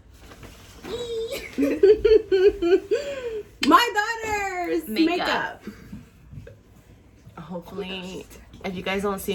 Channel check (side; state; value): both; identical; correlation 1.00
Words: My daughter's makeup. Hopefully, if you guys don't